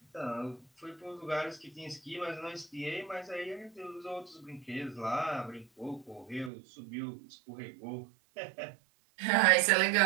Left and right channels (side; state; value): left; drops out; at 6.5 s